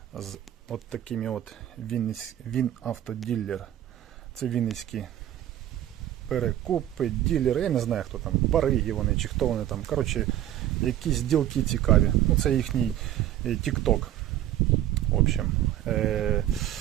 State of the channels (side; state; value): left; quieter; 12.4 dB